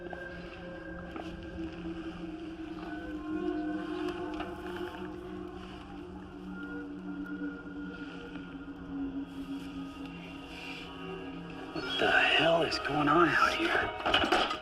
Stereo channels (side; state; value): both; identical; correlation 1.00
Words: What the hell is going on out here?